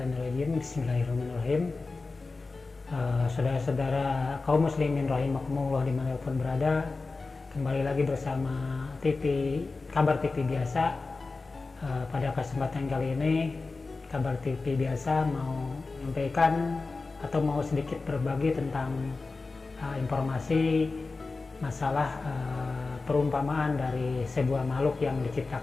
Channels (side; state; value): right; quieter; 3.8 dB